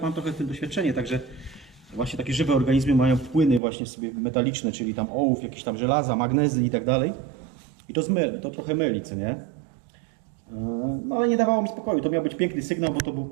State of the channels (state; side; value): drops out; left; at 3.6 s